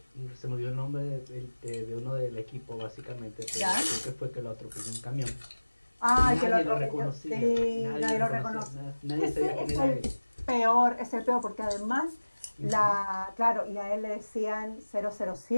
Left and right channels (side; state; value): both; inverted; correlation -1.00